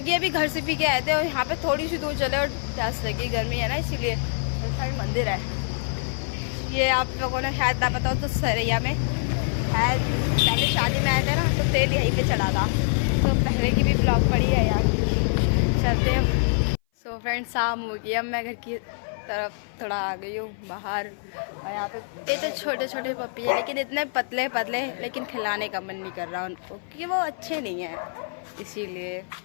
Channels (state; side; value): silent; right; 57 dB below the other